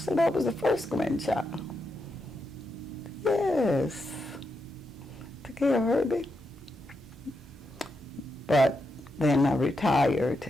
that was the first grandchild. Yes, took care of Herbie. But then I retired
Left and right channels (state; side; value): normal; both; correlation 0.84